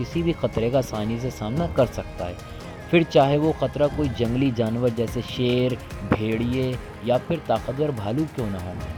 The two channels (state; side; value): identical; both; correlation 1.00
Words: भी खतरे का आसानी से सामना कर सकता है, फिर चाहे वो खतरा कोई जंगली जानवर जैसे शेर, भेड़िए या फिर ताकतवर भालू क्यों ना हो।